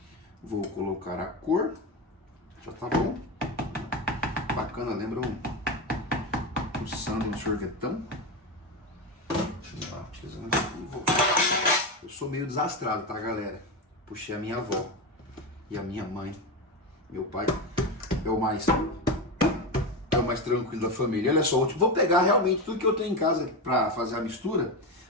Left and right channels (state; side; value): normal; both; correlation 0.17